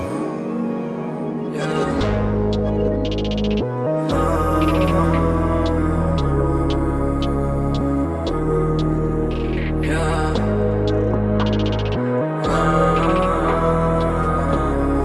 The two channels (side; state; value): both; identical; correlation 1.00